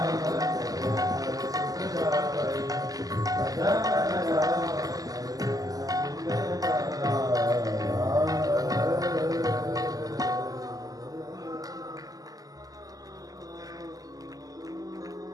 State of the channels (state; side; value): late; left; 0.17 ms